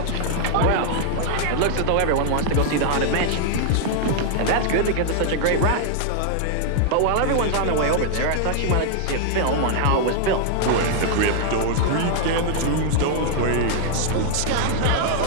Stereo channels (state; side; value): different; both; correlation 0.00